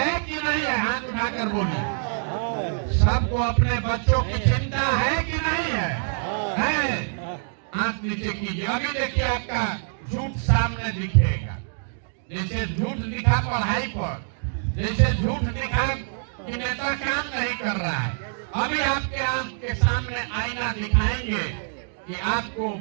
कि नहीं है? हाथ उठाकर बोलिए। सबको अपने बच्चों की चिंता है कि नहीं है? है? हाथ नीचे कीजिए। अभी देखिए आपका झूठ सामने दिखेगा। जैसे झूठ दिखा पढ़ाई पर, जैसे झूठ दिखा कि नेता काम नहीं कर रहा है, अभी आपके आंख के सामने आईना दिखाएंगे कि आपको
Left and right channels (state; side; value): silent; left; digital silence